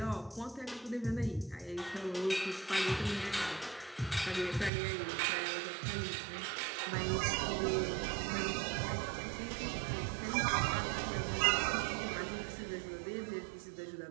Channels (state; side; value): drops out; left; at 4.7 s